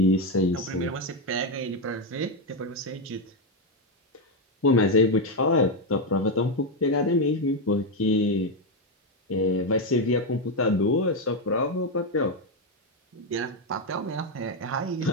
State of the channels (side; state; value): both; normal; correlation 0.06